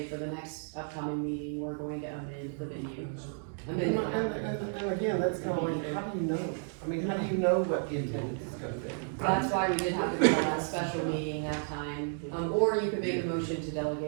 for the next upcoming meeting, we're going to amend the venue. And again, that's kind of like, how do you know? I mean, how do you know what the attendance is gonna be? That's why we did have to call that special meeting that time, or you could make a motion to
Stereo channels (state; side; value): silent; left; 56 dB below the other